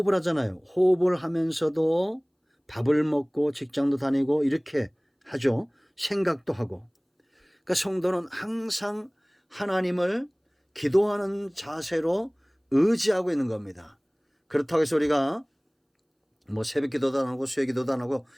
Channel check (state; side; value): identical; both; correlation 1.00